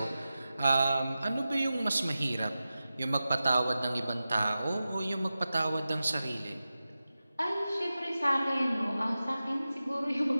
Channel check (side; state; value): both; inverted; correlation -0.94